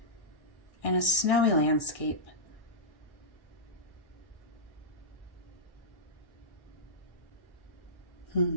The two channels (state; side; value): late; right; 1.6 ms